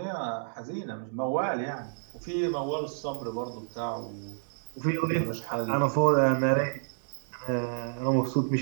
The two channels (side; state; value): left; silent; digital silence